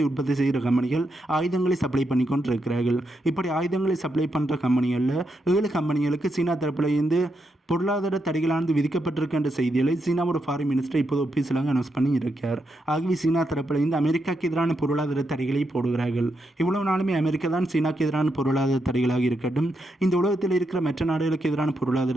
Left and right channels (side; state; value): both; normal; correlation 0.82